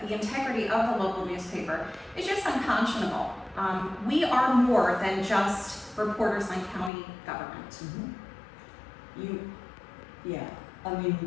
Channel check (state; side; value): drops out; right; at 6.9 s